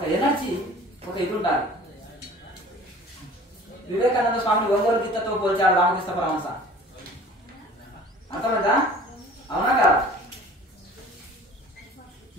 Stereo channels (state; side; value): normal; both; correlation 0.46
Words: ఎనర్జీ, ఒక ఇది ఉండాలి. వివేకానంద స్వామిని ఒంగోలు గీతతో పోల్చాడు రామకృష్ణ పరమహంస. అర్థమైందా? అవునా కాదా?